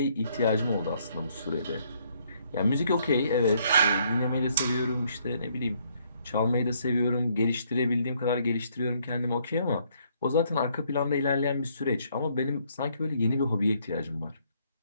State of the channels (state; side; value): inverted; both; correlation -0.69